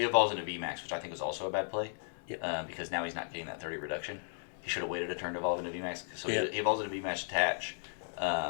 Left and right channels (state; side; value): silent; right; digital silence